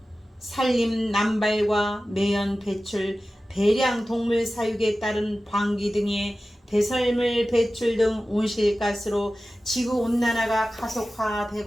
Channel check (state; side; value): normal; both; correlation 0.95